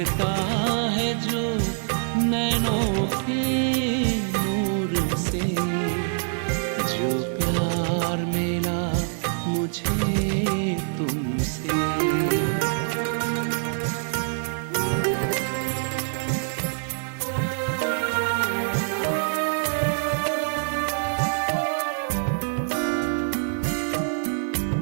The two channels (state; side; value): silent; left; digital silence